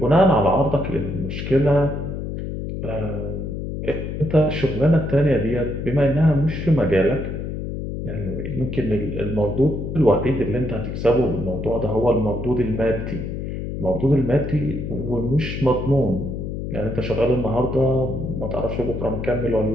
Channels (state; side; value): noise; left; hum, 5 dB below the sound